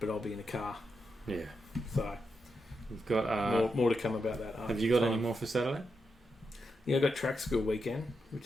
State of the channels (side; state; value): both; normal; correlation 0.85